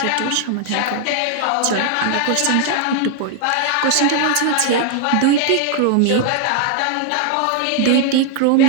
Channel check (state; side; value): different; both; correlation 0.00